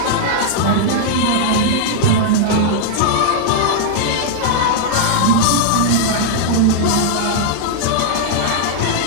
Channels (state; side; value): different; both; correlation -0.01